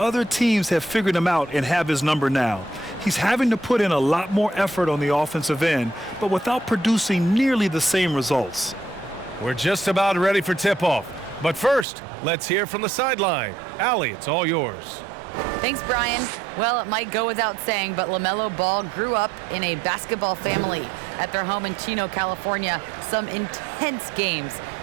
teams have figured him out and have his number now. He's having to put in a lot more effort on the offensive end, but without producing nearly the same results. We're just about ready for tip-off. But first, let's hear from the sideline. Allie, it's all yours. Thanks, Brian. Well, it might go without saying, but LaMelo Ball grew up in a basketball family. At their home in Chino, California, some intense games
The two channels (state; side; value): drops out; left; at 11.9 s